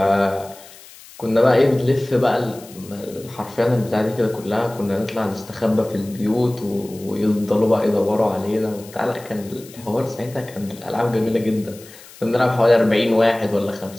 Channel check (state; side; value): noise; left; hiss, 20 dB below the sound